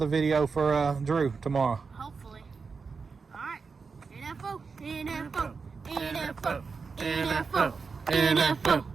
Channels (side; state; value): left; quieter; 5.0 dB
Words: video for Drew tomorrow. hopefully. Alright. NFO, NFO, NFO, NFO, NFO,